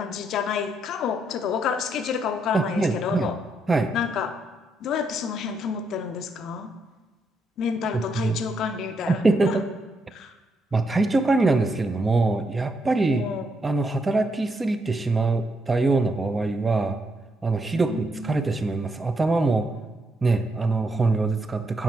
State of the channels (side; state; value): both; normal; correlation 0.78